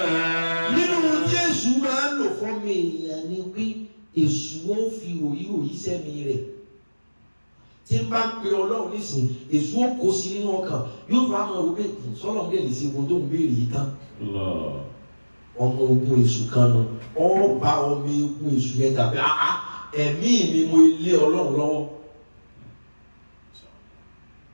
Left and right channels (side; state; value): both; inverted; correlation -1.00